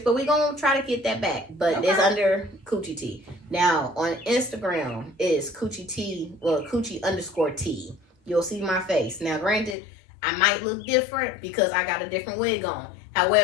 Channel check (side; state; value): right; drops out; at 9.8 s